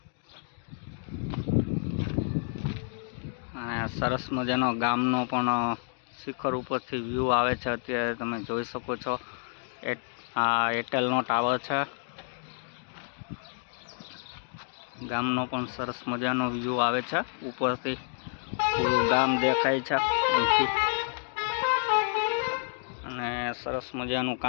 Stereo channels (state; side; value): silent; right; 58 dB below the other